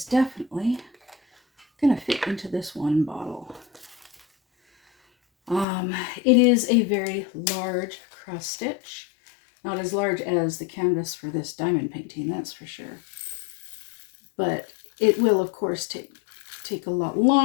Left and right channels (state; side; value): drops out; right; at 5.7 s